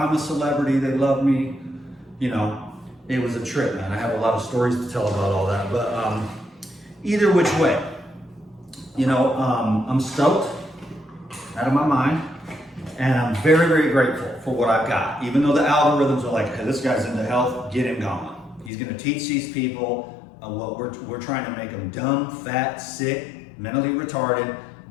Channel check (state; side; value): drops out; right; at 18.7 s